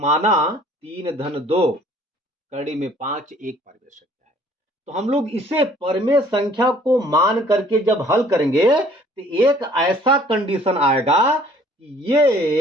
3 धन 2 कड़ी में 5 एक परिमेय संख्या है। तो हम लोग इसे परिमेय संख्या को मान करके जब हल करेंगे तो एक ऐसा कंडीशन आएगा कि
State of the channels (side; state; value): both; normal; correlation 0.56